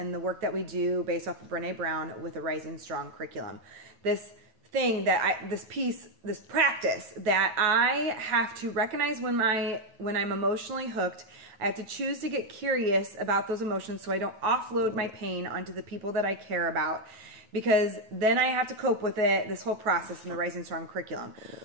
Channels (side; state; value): left; late; 9.2 ms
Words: the work that we do based off of Brene Brown with the Rising Strong curriculum. This thing that this practice that I have to recognize when I'm emotionally hooked. I have to choose to get curious about those emotions so I don't offload my pain onto the people that I care about, because then I have to cope with it, this whole process in the Rising Strong curriculum.